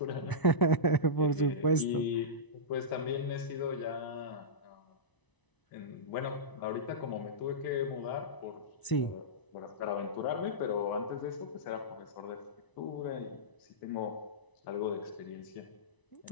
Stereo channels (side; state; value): right; late; 1.0 ms